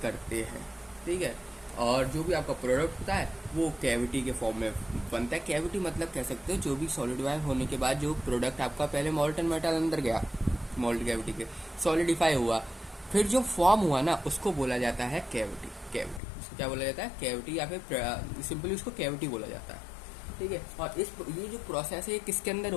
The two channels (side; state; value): right; drops out; at 16.2 s